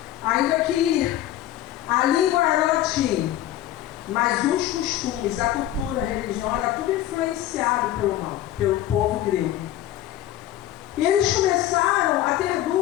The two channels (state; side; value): quieter; right; 13.3 dB